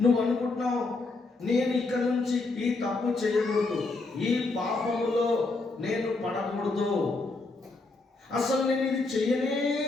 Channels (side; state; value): right; quieter; 3.5 dB